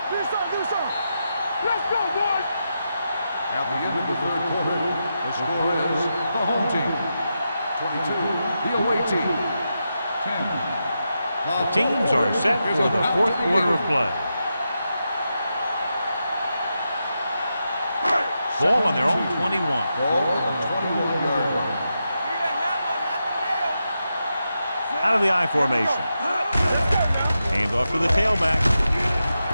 Do something, do something. Let's go, boys. At the end of the 3rd quarter, the score is the home team 22, the away team 10. The teams are set for the 4th quarter of play. Ball on their own 21. Ball on the 21-yard line. Out of the I formation. Hand off to the tailback.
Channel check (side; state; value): both; inverted; correlation -0.87